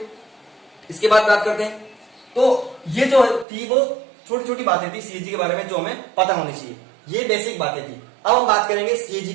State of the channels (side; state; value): left; drops out; at 3.5 s